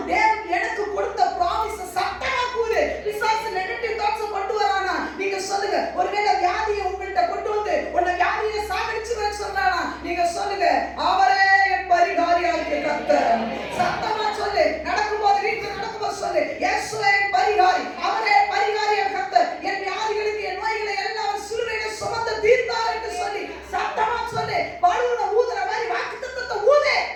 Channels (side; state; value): both; identical; correlation 1.00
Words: தேவன் எனக்கு கொடுத்த ப்ராமிஸை சத்தமா கூறு. பிசாசு நெகட்டிவ் தாட்ஸ் கொண்டு வரானா? நீங்க சொல்லுங்க. ஒருவேளை வியாதியை உங்கள்கிட்ட கொண்டு வந்து உன்னை வியாதியை சாகடிச்சுவேன்னு சொல்றானா? நீங்க சொல்லுங்க, அவரே என் பரிகாரியாகிய கர்த்தர். சத்தமா சொல்லு. நடக்கும்போது வீட்டுல நடக்கும்போது சொல்லு, இயேசுவே என் பரிகாரி, அவரே பரிகாரியாகிய கர்த்தர். என் வியாதிகளுக்கு என் நோய்களை எல்லாம் சிலுவையிலே சுமந்து தீர்த்தார் என்று சொல்லி சத்தமா சொல்லு. பலூனை ஊதுற மாதிரி வாக்குத்தத்தத்தை ஊது.